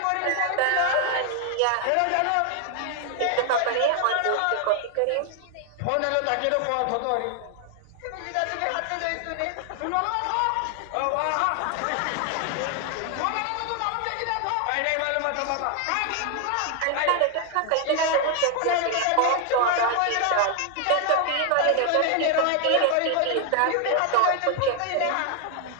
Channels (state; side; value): different; both; correlation 0.00